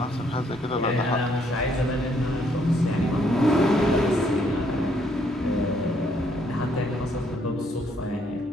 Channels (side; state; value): both; normal; correlation 0.69